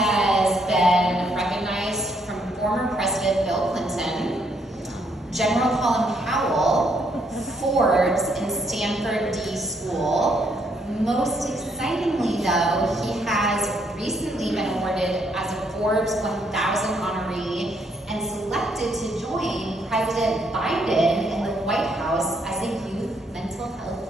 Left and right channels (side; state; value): both; normal; correlation 0.72